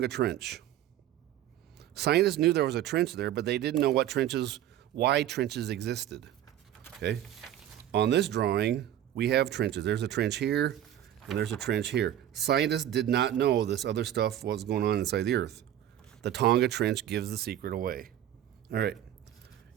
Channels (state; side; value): quieter; left; 11.7 dB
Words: Trench. Scientists knew there was a trench there, but they didn't know why trenches existed. Okay, on this drawing, we have trenches. There's a trench here, and there's a trench here. Scientists did not know this other stuff was going on inside the Earth. The Tonga Trench gives the secret away. All right,